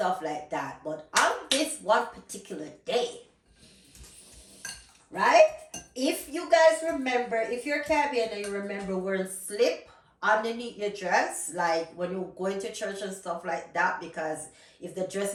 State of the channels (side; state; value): both; identical; correlation 1.00